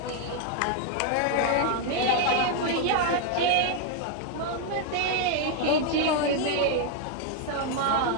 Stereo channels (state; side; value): different; both; correlation 0.00